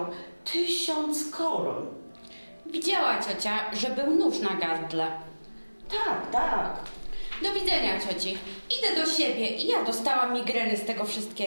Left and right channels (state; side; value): inverted; both; correlation -1.00